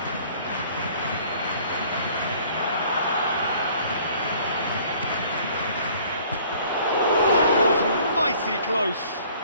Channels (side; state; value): both; inverted; correlation -0.55